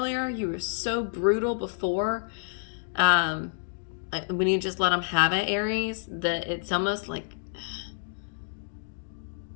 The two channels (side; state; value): right; silent; digital silence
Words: You were so brutal before. When you just let them have it, Aries, that it's almost like,